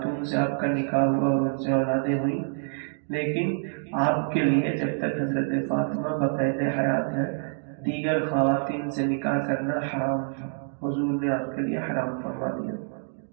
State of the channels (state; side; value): silent; left; 58 dB below the other